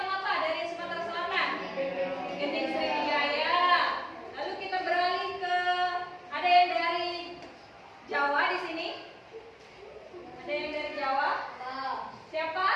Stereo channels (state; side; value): identical; both; correlation 1.00